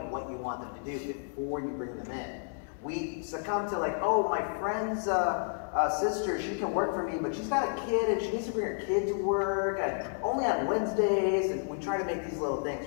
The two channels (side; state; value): right; silent; 57 dB below the other